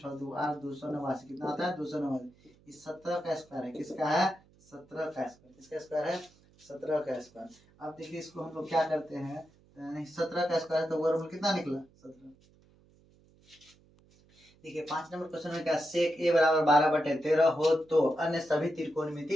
2 8 289। कितना होता है? 289। इस 17 का स्क्वायर है। किसका है? 17 का स्क्वायर। किसका स्क्वायर है? 17 का स्क्वायर। अब देखिए इसको हम लोग क्या करते हैं, 17 का स्क्वायर तो वर्गमूल कितना निकला? 17। देखिए 5 नंबर क्वेश्चन में क्या, सेक ए बराबर 12/13 हो तो अन्य सभी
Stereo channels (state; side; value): noise; right; hum, 29 dB below the sound